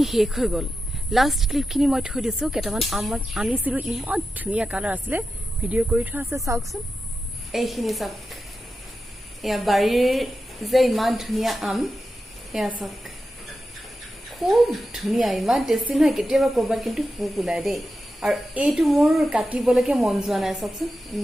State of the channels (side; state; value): both; normal; correlation 0.91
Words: শেষ হৈ গ'ল, লাষ্ট ক্লিপখিনি মই থৈ দিছোঁ। কেইটামান আম মই আনিছিলোঁ, ইমান ধুনীয়া কালাৰ আছিলে, ভিডিঅ' কৰি থোৱা আছে, চাওকচোন। এইখিনি চাওক, এয়া বাৰীৰ যে ইমান ধুনীয়া আম, এয়া চাওক, খুব ধুনীয়া, ইমান টেষ্টি নহয়। কেতিয়াবা ক'ৰবাত কিন্তু পোক ওলাই দেই, আৰু এইটো মোৰ কাটিবলৈকে মন যোৱা নাই, চাওকচোন